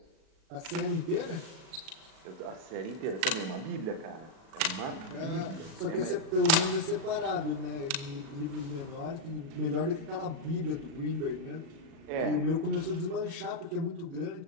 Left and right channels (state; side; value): late; left; 37 ms